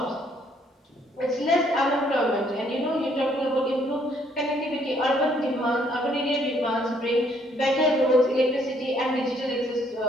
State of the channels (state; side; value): normal; both; correlation 0.67